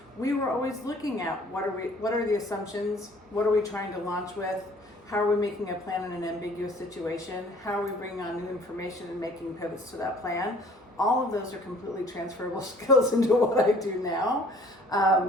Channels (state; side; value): normal; both; correlation 0.54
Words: we were always looking at what are the assumptions, what are we trying to launch with, how are we making a plan in an ambiguous situation, how are we bringing on new information and making pivots to that plan. All of those are completely transferable skills into what I do now.